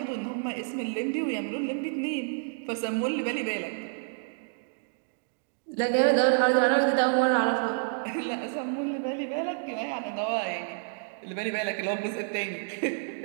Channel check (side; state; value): left; silent; 59 dB below the other